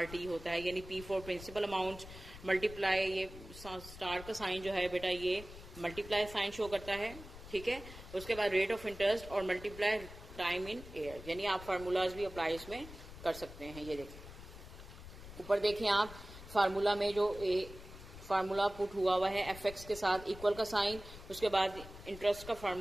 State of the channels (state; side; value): noise; left; rumble, 15 dB below the sound